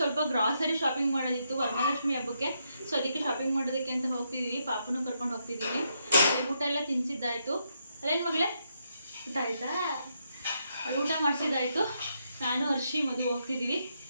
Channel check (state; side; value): inverted; both; correlation -0.79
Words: ಗ್ರಾಸರಿ ಶಾಪಿಂಗ್ ಮಾಡೋದಿತ್ತು ವರಮಹಾಲಕ್ಷ್ಮಿ ಹಬ್ಬಕ್ಕೆ. ಸೊ ಅದಕ್ಕೆ ಶಾಪಿಂಗ್ ಮಾಡೋದಕ್ಕೆ ಅಂತ ಹೋಗ್ತಿದ್ದೀವಿ. ಪಾಪನೂ ಕರ್ಕೊಂಡು ಹೋಗ್ತಿದ್ದೀವಿ. ಊಟ ಎಲ್ಲ ತಿನ್ನಿಸಿದ್ದಾಯಿತು. ಅಲ್ಲೇನು ಮಗಳೇ, ಊಟ ಆಯಿತಾ? ಊಟ ಮಾಡಿಸಿದ್ದಾಯಿತು. ನಾನು ಹರ್ಷಿ ಮಧು ಹೋಗ್ತಿದ್ದೀವಿ.